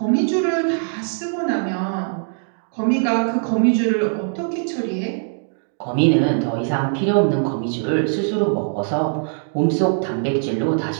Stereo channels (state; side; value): silent; left; 65 dB below the other